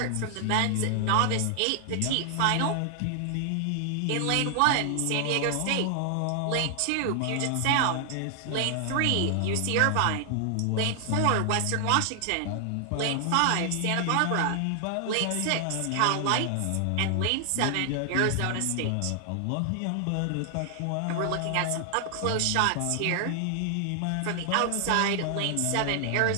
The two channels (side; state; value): both; different; correlation 0.00